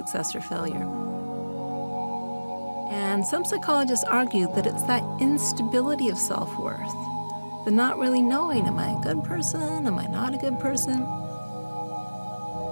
or failure. And some psychologists argue that it's that instability of self-worth, the not really knowing, am I a good person, am I not a good person?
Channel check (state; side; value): inverted; both; correlation -1.00